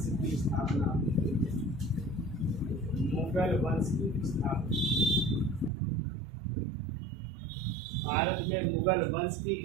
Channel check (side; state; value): left; drops out; at 5.7 s